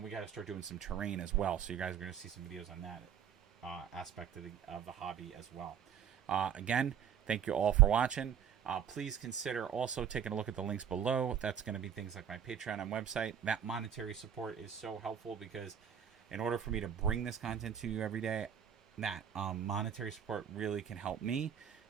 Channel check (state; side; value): quieter; left; 8.7 dB